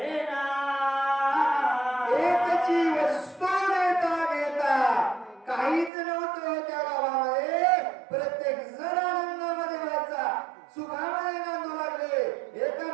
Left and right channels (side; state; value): left; drops out; at 5.9 s